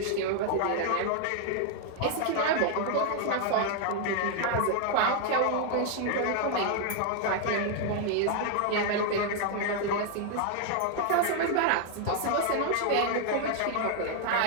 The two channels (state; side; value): different; both; correlation 0.00